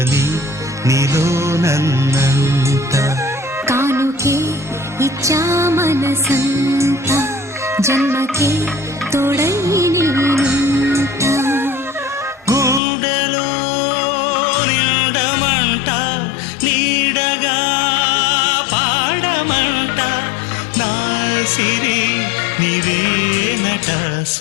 నీలో నన్నంట కానుకే ఇచ్చా మనసంత జన్మకే తోడై నేనుంట గుండెలో నిండమంట నీడగా పాడమంట నా సిరి నీవేనట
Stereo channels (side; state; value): right; drops out; at 12.8 s